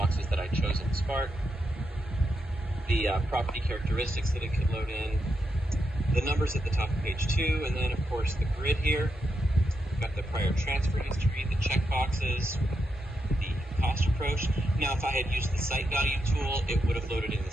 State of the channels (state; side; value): normal; both; correlation 0.84